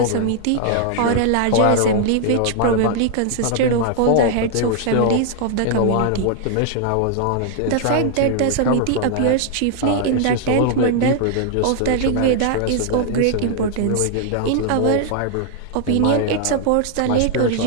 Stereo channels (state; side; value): different; both; correlation 0.00